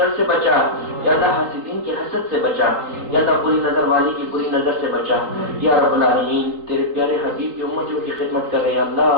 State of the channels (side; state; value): left; late; 3.8 ms